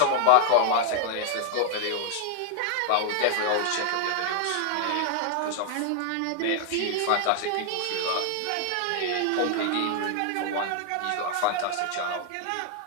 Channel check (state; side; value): different; both; correlation 0.00